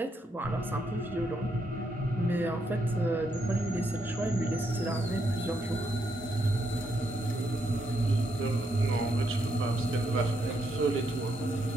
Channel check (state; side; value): normal; both; correlation 0.78